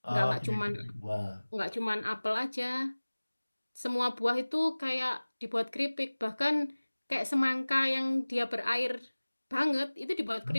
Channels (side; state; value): both; inverted; correlation -1.00